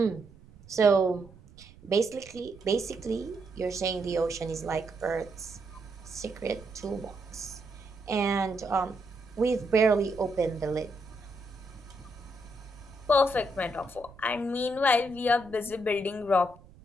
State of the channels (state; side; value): noise; right; rumble, 22 dB below the sound